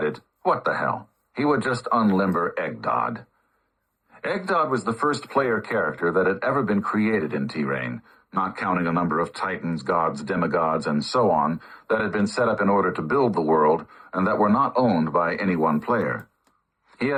what the hell, he would just unlimber Eggdod. Eggdod was the first player character that had ever been created in T-Rain, not counting a number of titans, gods, demigods, and so on that had been set up in order to build the world and that were not owned by any one player. He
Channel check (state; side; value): identical; both; correlation 1.00